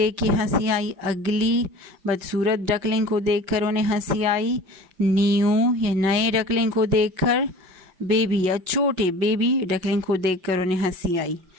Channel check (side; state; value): left; late; 5.7 ms